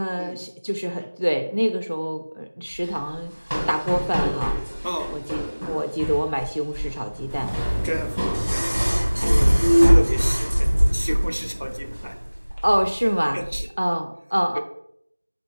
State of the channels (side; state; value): both; inverted; correlation -1.00